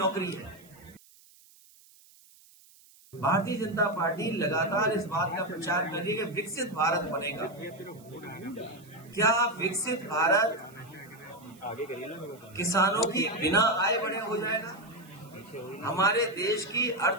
है। भारतीय जनता पार्टी लगातार इस बात का प्रचार कर रही है कि विकसित भारत बनेगा। क्या विकसित भारत किसानों की बिना आय बढ़े हो जाएगा? हमारे देश की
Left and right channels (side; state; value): right; noise; hiss, 26 dB below the sound